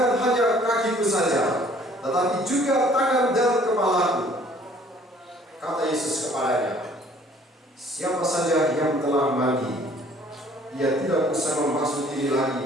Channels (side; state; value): both; normal; correlation 0.56